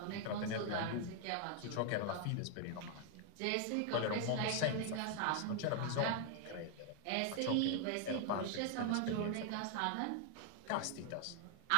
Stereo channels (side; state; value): both; different; correlation 0.00